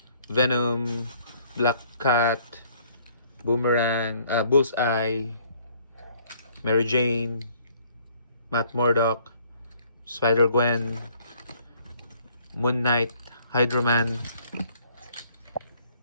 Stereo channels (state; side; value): inverted; both; correlation -0.61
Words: Venom, Black Cat, Boomerang, Bullseye, Mary Jane, Matt Murdock, Spider-Gwen, Moon Knight, Hydro-Man,